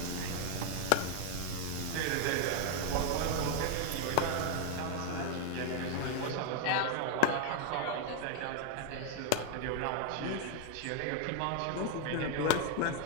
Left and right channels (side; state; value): both; different; correlation 0.00